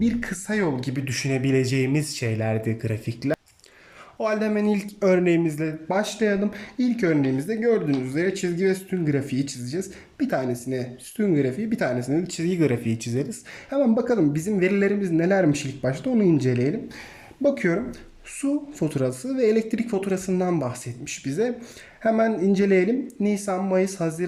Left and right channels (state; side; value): identical; both; correlation 1.00